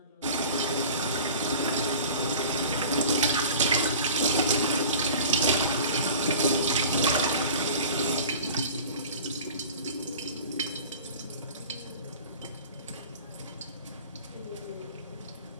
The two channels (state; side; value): inverted; both; correlation -0.40